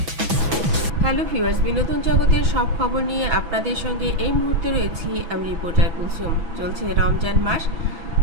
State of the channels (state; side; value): late; left; 6.1 ms